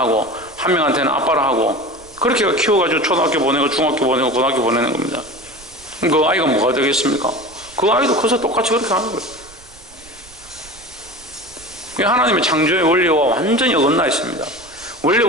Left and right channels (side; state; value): right; noise; rumble, 24 dB below the sound